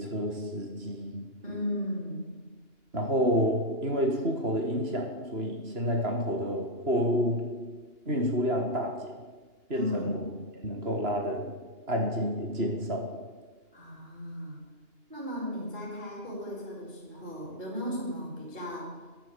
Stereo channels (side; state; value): left; late; 2.9 ms